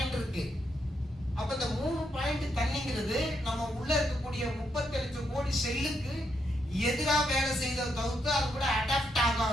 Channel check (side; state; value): both; normal; correlation 0.79